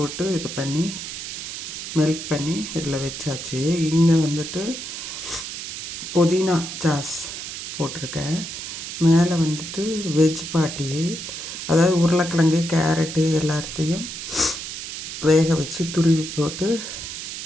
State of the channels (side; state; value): right; noise; hiss, 7 dB below the sound